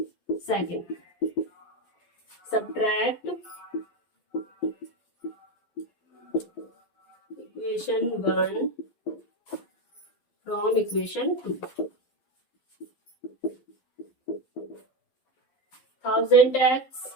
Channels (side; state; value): right; late; 11 ms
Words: second. Subtract equation 1 from equation 2। 1000x